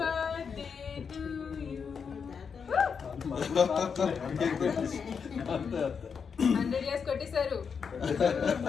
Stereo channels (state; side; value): quieter; right; 6.2 dB